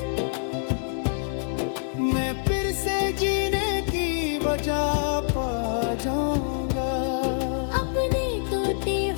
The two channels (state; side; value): silent; right; digital silence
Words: मैं फिर से जीने की वजह पा जाऊंगा। अपने तोते